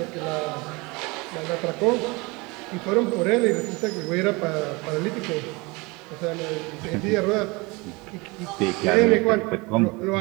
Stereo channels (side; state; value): left; quieter; 25.5 dB